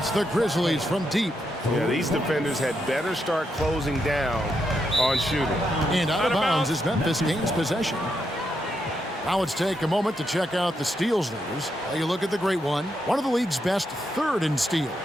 the Grizzlies from deep. Yeah, these defenders had better start closing down on shooting. And out of bounds as Memphis gains possession. Now let's take a moment to check out the steals leaders. You look at the great one of the league's best, 3rd in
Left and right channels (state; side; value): normal; both; correlation 0.81